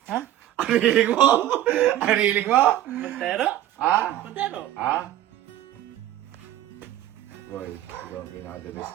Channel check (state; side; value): quieter; left; 13.0 dB